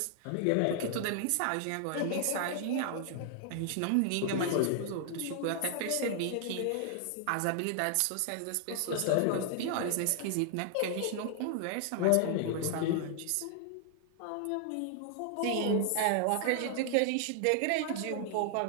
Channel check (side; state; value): both; different; correlation 0.00